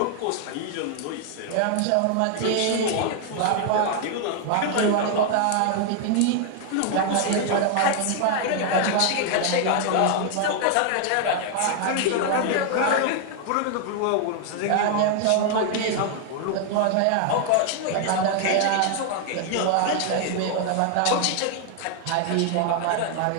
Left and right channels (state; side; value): different; both; correlation 0.00